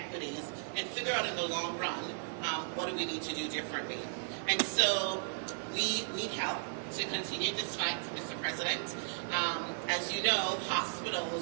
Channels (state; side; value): silent; left; 54 dB below the other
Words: and figure out in the long run, what do we need to do differently. And so we need help to continue this fight, Mr. President. As you know,